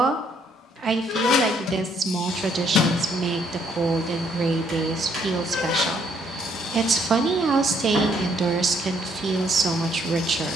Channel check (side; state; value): both; normal; correlation 0.68